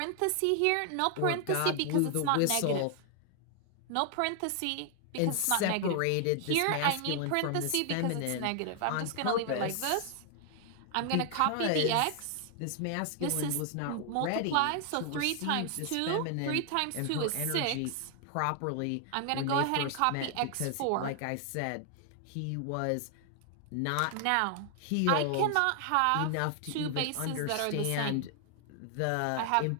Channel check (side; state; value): both; different; correlation 0.00